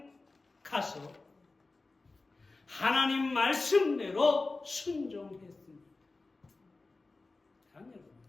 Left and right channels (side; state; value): right; quieter; 3.5 dB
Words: 가서 하나님 말씀대로 순종했습니다. 여러분,